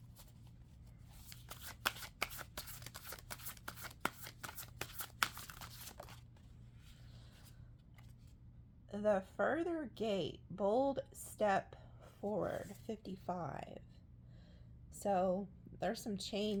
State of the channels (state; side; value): identical; both; correlation 1.00